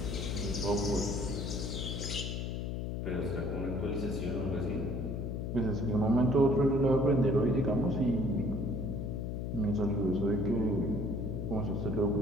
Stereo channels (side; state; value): left; noise; hum, 3 dB below the sound